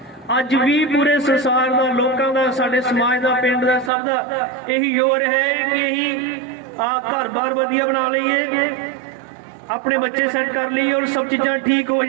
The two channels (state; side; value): drops out; left; at 3.9 s